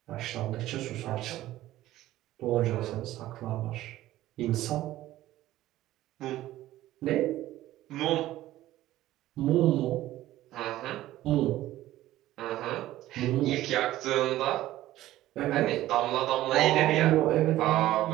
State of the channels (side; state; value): left; quieter; 15.0 dB